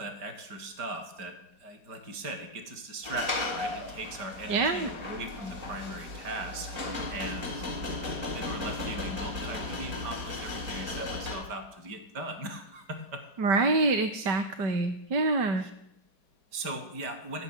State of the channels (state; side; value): late; left; 5.0 ms